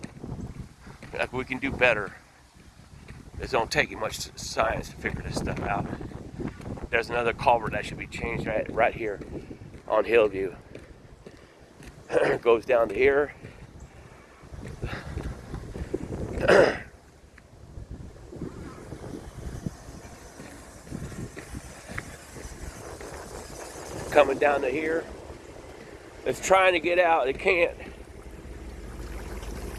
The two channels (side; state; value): both; identical; correlation 1.00